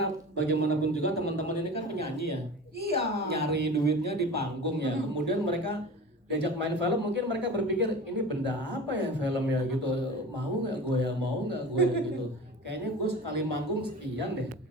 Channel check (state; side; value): normal; both; correlation 0.35